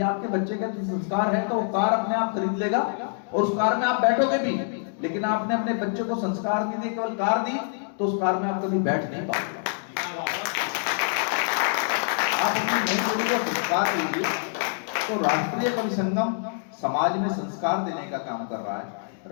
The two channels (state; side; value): silent; right; digital silence